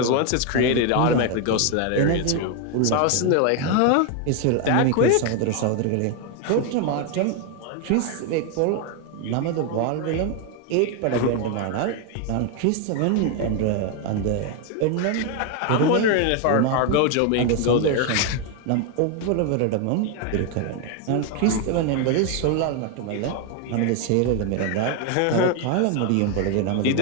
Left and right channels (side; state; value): both; different; correlation 0.01